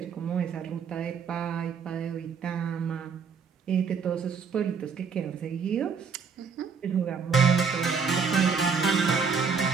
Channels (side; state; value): left; quieter; 5.9 dB